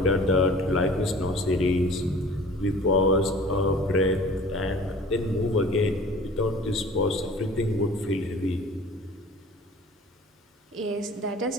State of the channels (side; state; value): both; normal; correlation 0.45